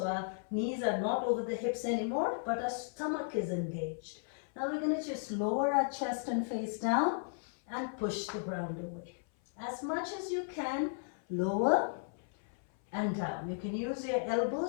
our knees are not over the hips anymore, but our stomach is engaged. Now we're going to just lower our chest and face down and push the ground away. As much as you can, lower and down. You can use your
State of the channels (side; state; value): right; silent; 54 dB below the other